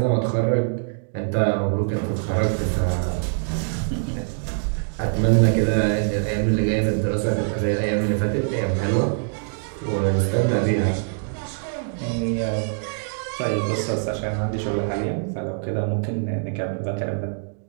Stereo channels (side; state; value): left; silent; digital silence